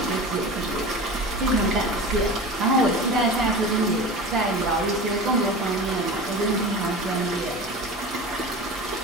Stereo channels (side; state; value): both; normal; correlation 0.32